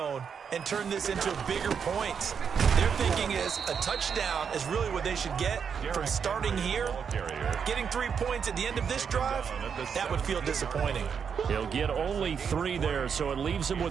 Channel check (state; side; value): quieter; left; 6.8 dB